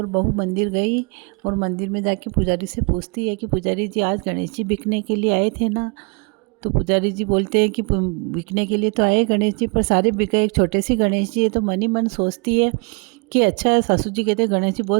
बहू मंदिर गई, और मंदिर में जाके पुजारी से पूछती है कि पुजारी जी आज गणेश जी बिकने के लिए आए थे ना? तो पुजारी जी बोलते हैं कि बिकने के लिए तो आए गणेश जी, पर सारे बिके, एक छोटे से गणेश जी है। तो मन ही मन सोचती है कि अच्छा है, सासू जी कहते हैं गणेश जी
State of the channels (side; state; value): left; quieter; 32.2 dB